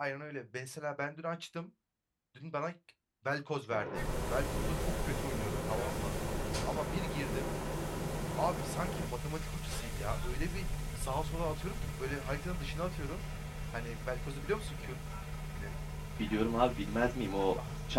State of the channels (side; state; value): both; identical; correlation 1.00